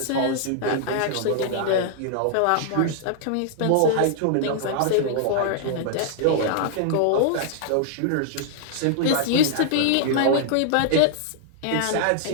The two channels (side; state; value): both; different; correlation -0.01